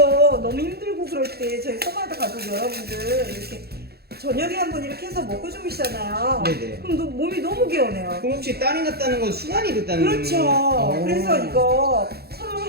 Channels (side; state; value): left; late; 0.46 ms